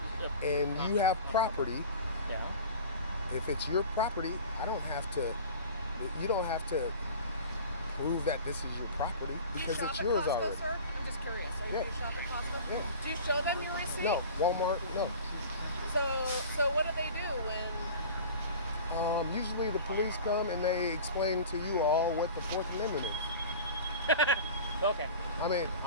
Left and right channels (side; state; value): both; inverted; correlation -0.38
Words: and you have property. Yeah. If it's your property, you don't have to prove that this is your property because it's yours Costco, already. Sir? I'm just curious. Are you do shop at Costco? Yeah. Do you show them your receipt? No. Walmart, no. So what do they do when? Usually the police come and they explain to you all what the Fourth Amendment is. Okay. I mean,